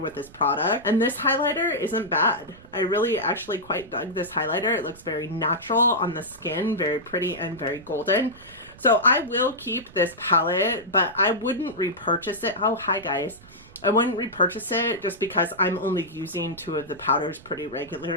with this product. And this highlighter isn't bad. I really actually quite dug this highlighter. It looks very natural on the skin, very pretty and very golden. So I will keep this palette, but I wouldn't repurchase it. Oh, hi guys. I wouldn't repurchase it just because I'm only using two of the powders pretty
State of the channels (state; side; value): noise; right; rumble, 22 dB below the sound